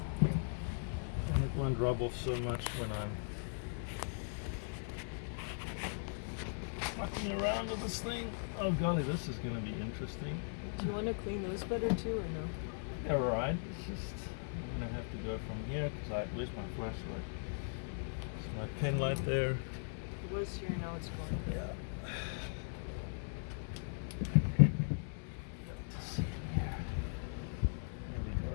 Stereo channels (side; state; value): right; silent; 52 dB below the other